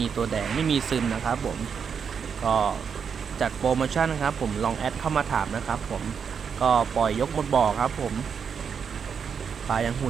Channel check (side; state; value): left; quieter; 6.7 dB